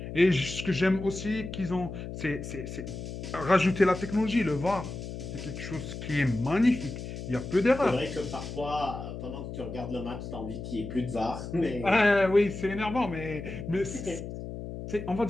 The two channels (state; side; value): noise; left; hum, 8 dB below the sound